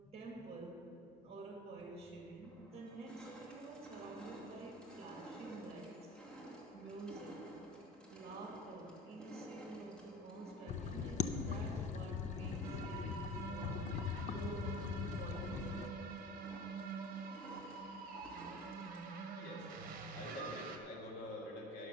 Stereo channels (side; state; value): both; normal; correlation 0.39